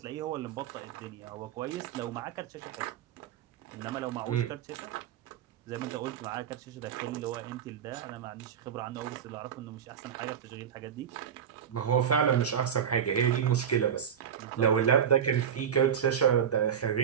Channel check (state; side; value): quieter; left; 8.4 dB